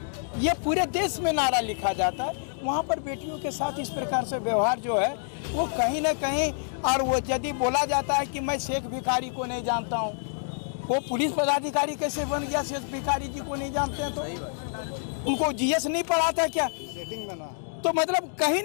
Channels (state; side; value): silent; right; digital silence